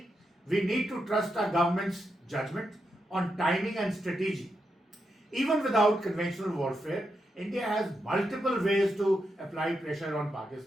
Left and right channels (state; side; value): normal; both; correlation 0.85